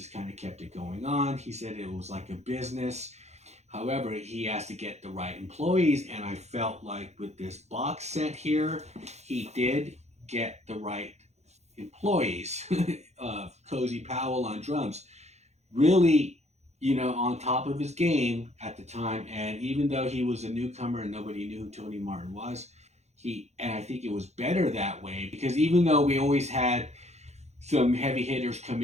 kind of kept it going on. He said it was like a business. However, he has to get the right employees. And I felt like with this box set here, he did get the right employees. Cozy Powell on drums. Really, you know, on top of his game at the time. And even though he was a newcomer and nobody knew who Tony Martin was, and I think it was better that way, because even though we always had some heavy hitters come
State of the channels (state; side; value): late; left; 0.32 ms